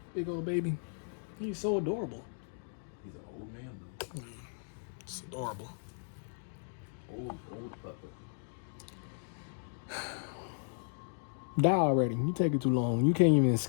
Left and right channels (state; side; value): silent; right; digital silence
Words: Big old baby. He's so adorable. He's an old man, though. It's adorable. Old pupper. Die already. You take it too long. You can't even